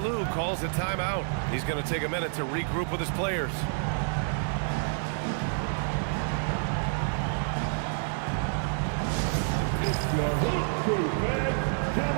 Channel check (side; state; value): left; silent; 57 dB below the other